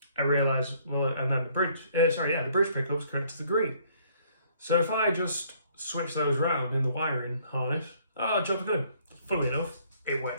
I realised, well, and then the bridge pickup is connected to the green. So if I just switch those round in the wiring harness, job's good. Funnily enough, it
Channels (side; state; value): both; inverted; correlation -0.62